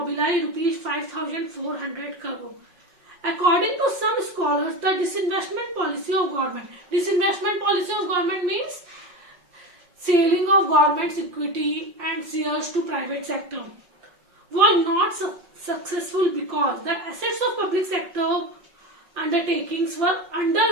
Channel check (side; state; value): left; late; 5.4 ms